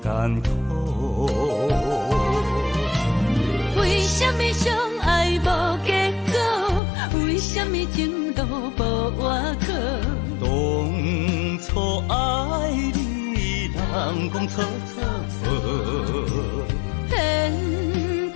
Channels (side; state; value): right; drops out; at 6.8 s